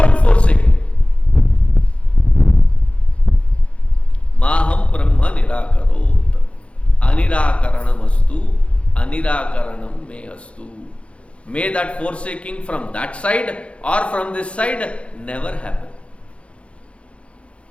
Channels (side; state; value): right; late; 0.061 ms